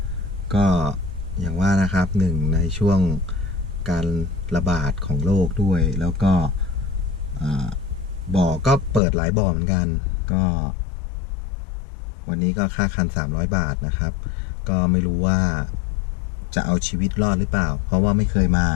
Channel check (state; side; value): drops out; right; at 9.0 s